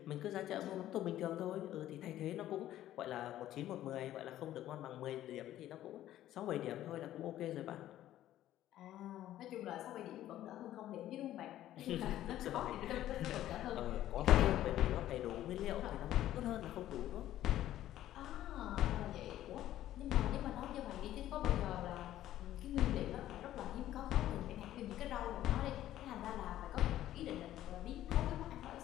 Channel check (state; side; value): quieter; right; 13.2 dB